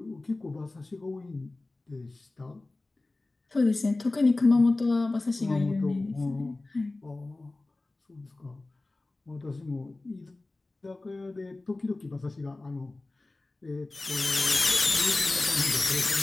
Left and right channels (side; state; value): right; quieter; 3.1 dB